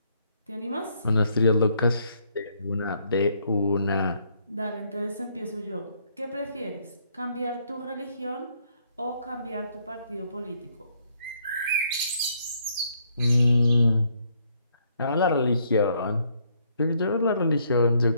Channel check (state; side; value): inverted; both; correlation -0.70